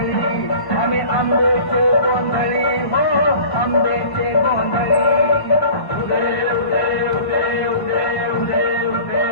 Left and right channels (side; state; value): right; late; 1.1 ms